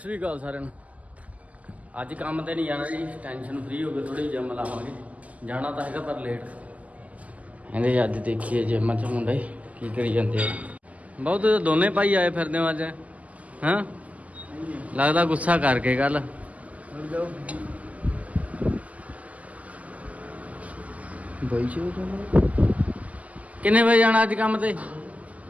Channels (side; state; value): left; late; 0.072 ms